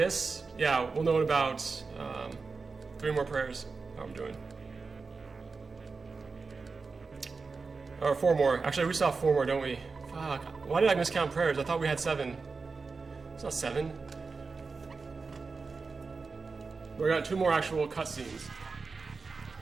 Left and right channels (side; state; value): left; quieter; 4.4 dB